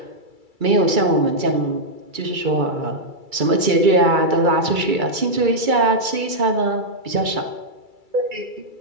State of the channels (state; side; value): late; left; 2.3 ms